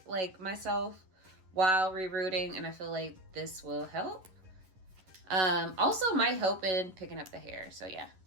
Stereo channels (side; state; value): left; late; 11 ms